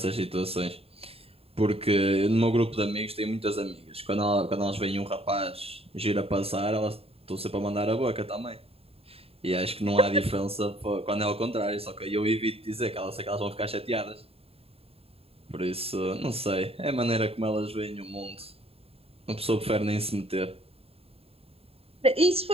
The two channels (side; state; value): left; late; 0.28 ms